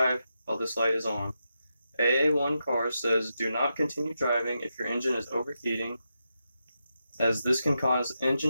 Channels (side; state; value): both; inverted; correlation -0.87